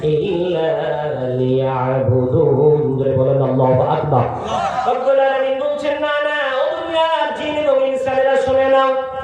ইল্লা লিয়াবুদুন। বলেন আল্লাহু আকবার। রব্বুল আলামিন বলছেন, না না, ও দুনিয়ার জিন এবং ইনসানেরা শুনে নাও,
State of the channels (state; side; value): identical; both; correlation 1.00